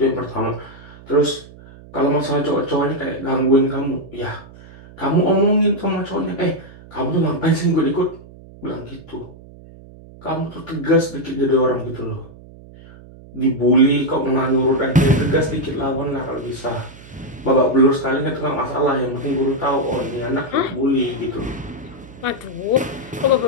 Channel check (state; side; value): noise; right; hum, 20 dB below the sound